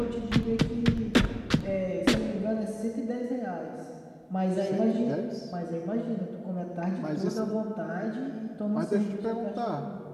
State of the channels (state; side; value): identical; both; correlation 1.00